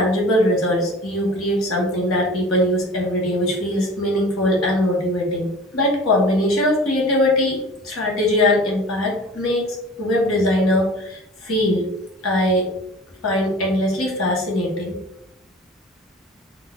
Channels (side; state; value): both; normal; correlation 0.41